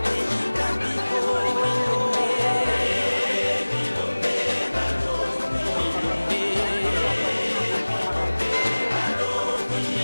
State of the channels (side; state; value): both; inverted; correlation -1.00